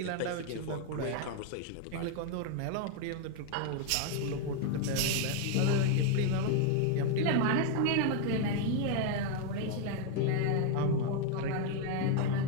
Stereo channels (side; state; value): both; different; correlation 0.01